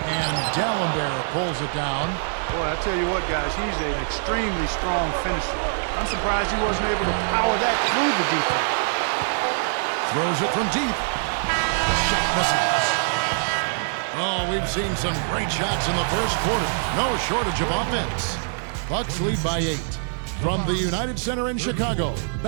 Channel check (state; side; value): silent; left; 56 dB below the other